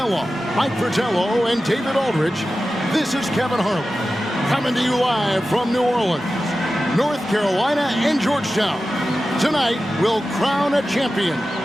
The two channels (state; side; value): normal; both; correlation 0.94